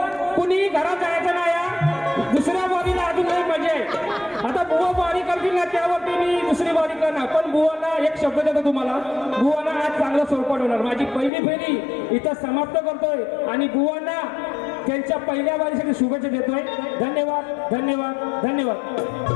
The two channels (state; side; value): drops out; right; at 11.3 s